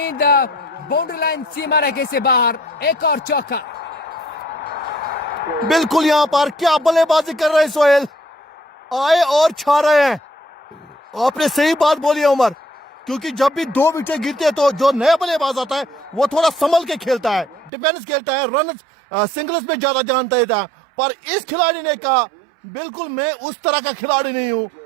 बाउंड्री लाइन सीमा रेखे से बाहर, एक और चौका। बिल्कुल यहां पर क्या बल्लेबाजी कर रहे हैं सोहेल, आए और छा रहे हैं। आपने सही बात बोली है उमर, क्योंकि जब भी 2 विकेट गिरते हैं तो जो नया बल्लेबाज आता है वो थोड़ा संभल के खेलता है, डिफेंस खेलता है, रन सिंगल्स में ज्यादा ध्यान देता है। पर इस खिलाड़ी ने कहा बिल्कुल मैं उस तरह का खिलाड़ी नहीं हूं,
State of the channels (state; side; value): drops out; left; at 17.7 s